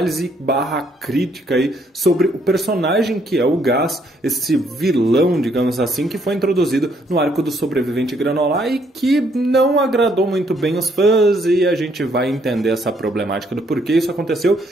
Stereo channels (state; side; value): normal; both; correlation 0.69